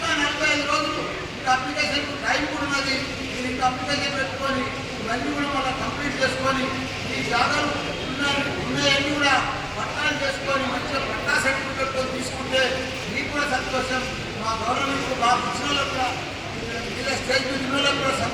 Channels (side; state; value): both; identical; correlation 1.00